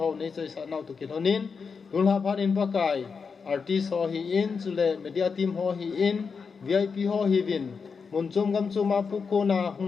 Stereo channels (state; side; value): quieter; right; 5.5 dB